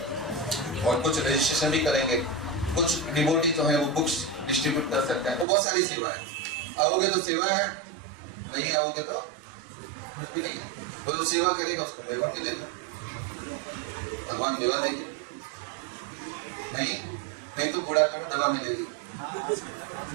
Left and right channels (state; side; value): drops out; left; at 5.5 s